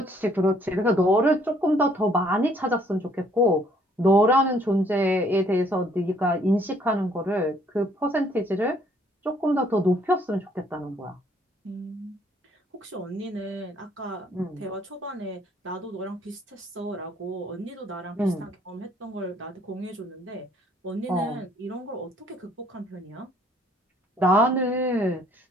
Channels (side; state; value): both; normal; correlation 0.63